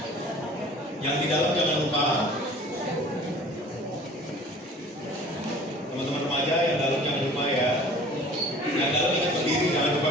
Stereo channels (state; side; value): normal; both; correlation 0.47